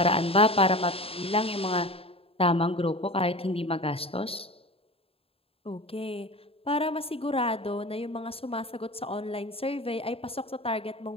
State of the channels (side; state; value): right; late; 0.27 ms